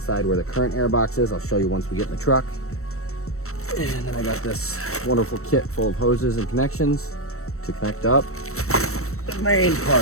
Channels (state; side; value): late; right; 0.63 ms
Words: where the current air box is. I'll show you once we get in the truck. And then I got this wonderful kit full of hoses and connections to connect up the main